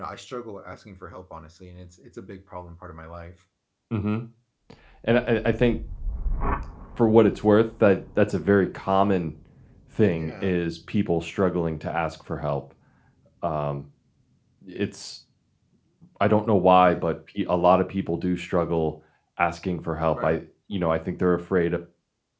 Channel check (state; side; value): identical; both; correlation 1.00